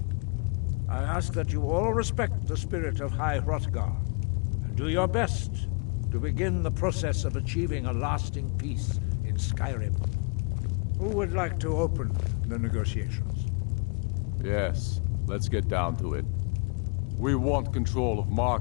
I ask that you all respect the spirit of High Hrothgar, and do your best to begin the process of achieving a lasting peace in Skyrim. Who would like to open the negotiations? Yes, let's get down to it. We want control of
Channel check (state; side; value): quieter; right; 32.3 dB